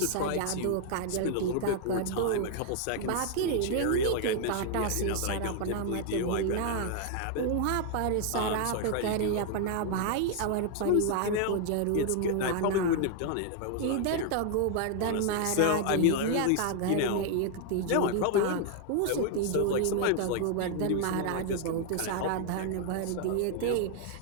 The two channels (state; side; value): different; both; correlation 0.00